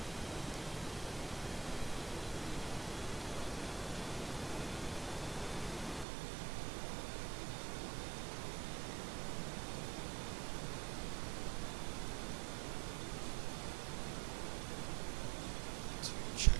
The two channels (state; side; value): drops out; left; at 6.1 s